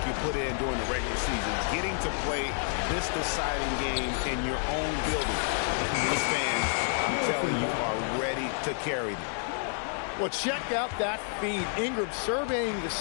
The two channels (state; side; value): silent; right; 58 dB below the other